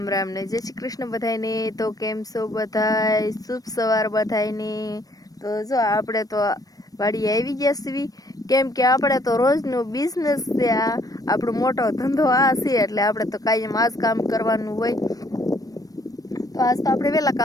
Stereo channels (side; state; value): right; late; 0.18 ms